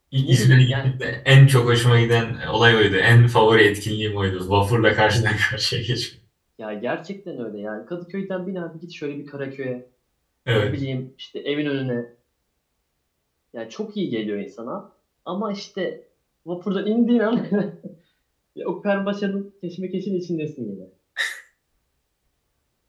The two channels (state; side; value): identical; both; correlation 1.00